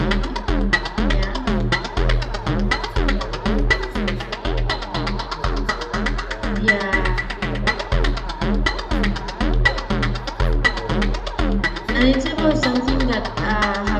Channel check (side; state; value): both; identical; correlation 1.00